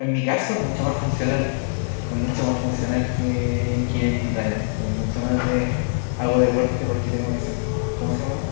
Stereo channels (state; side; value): silent; right; digital silence